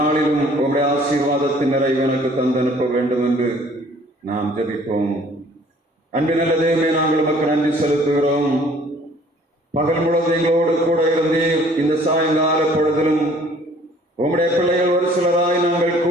உங்களுடைய ஆசீர்வாதத்தின் நிறைவு எனக்கு தந்து அனுப்ப வேண்டும் என்று நாம் ஜெபிப்போம். அன்பின் நல்ல தேவமே, நாங்கள் உமக்கு நன்றி செலுத்துகிறோம். பகல் முழுவதும் எங்களோடு கூட இருந்தீர். இந்த சாயங்கால பொழுதிலும் உம்முடைய பிள்ளைகள் ஒரு சிலராய் நாங்கள்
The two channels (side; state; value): both; normal; correlation 0.55